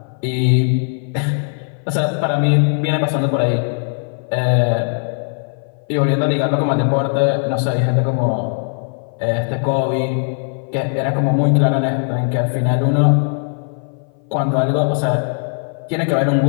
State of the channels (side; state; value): right; silent; 58 dB below the other